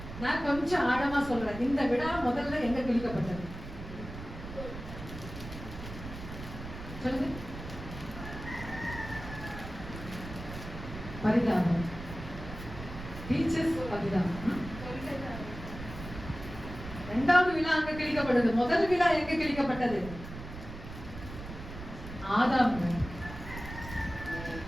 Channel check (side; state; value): right; noise; rumble, 11 dB below the sound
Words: நான் கொஞ்சம் ஆழமா சொல்றேன். இந்த விழா முதல்ல எங்க கிழிக்கப்பட்டது சொல்லுங்க. பரிதாபம். டீச்சர்ஸ் பரிதாபம். இரண்டாவது விழா அங்க கிழிக்கப்பட்டது. முதல் விழா எங்க கிழிக்கப்பட்டது? ஆதாம்.